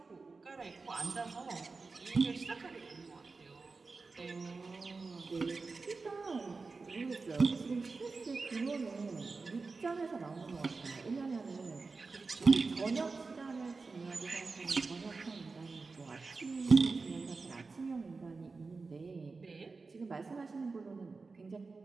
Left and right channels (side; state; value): left; quieter; 4.1 dB